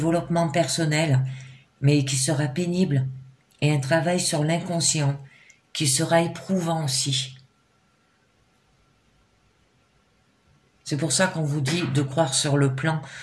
personnel, mais qui sera pénible, et un travail sur l'inconscient, qui sera éprouvant aussi. C'est pour ça qu'on vous dit de croire sur le plan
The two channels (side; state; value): both; identical; correlation 1.00